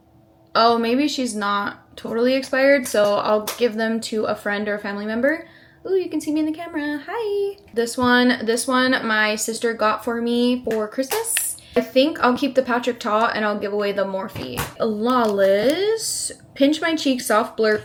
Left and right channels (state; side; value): identical; both; correlation 1.00